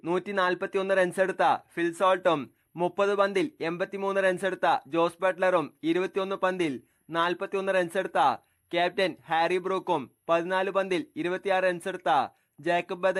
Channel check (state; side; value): identical; both; correlation 1.00